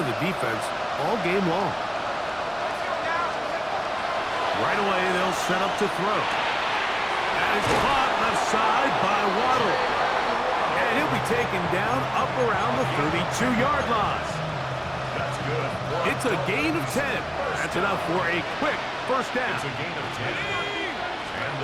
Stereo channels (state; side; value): identical; both; correlation 1.00